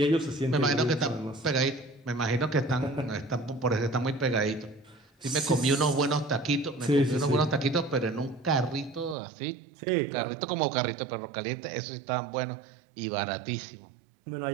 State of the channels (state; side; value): drops out; left; at 9.2 s